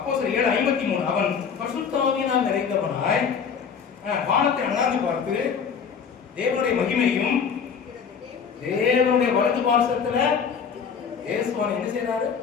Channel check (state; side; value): quieter; right; 6.6 dB